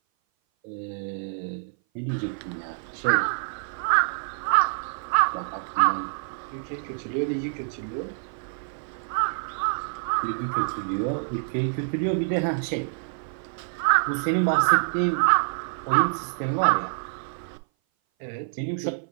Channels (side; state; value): left; silent; 58 dB below the other